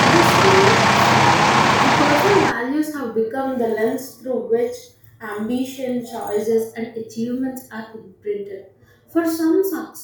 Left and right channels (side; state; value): both; identical; correlation 1.00